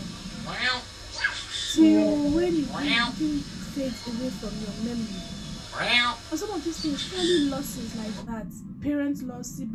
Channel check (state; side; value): identical; both; correlation 1.00